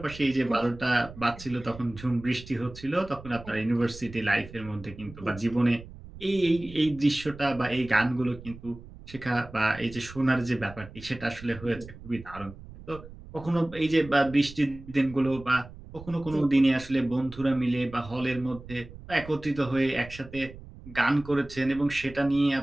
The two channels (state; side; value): noise; right; rumble, 16 dB below the sound